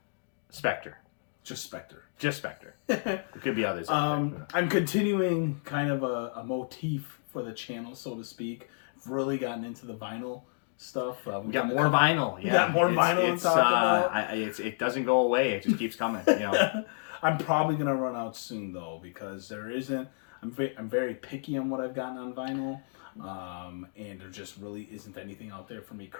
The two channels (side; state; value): right; silent; digital silence